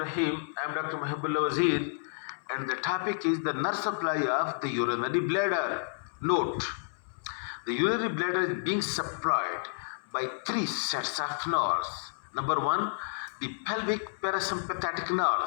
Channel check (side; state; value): right; silent; 57 dB below the other